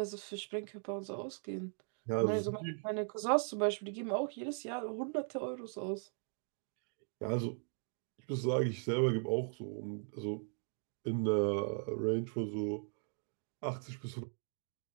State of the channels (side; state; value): left; silent; 52 dB below the other